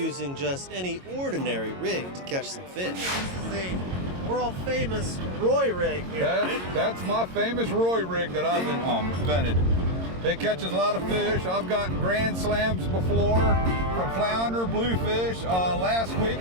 just any ordinary rig to catch some fish. This is the world-famous Roy rig here, right? That's my famous Roy rig that I've invented. It catches a lot of fish. I've gotten grand slams before from flounder, bluefish. Last week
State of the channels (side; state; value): left; late; 22 ms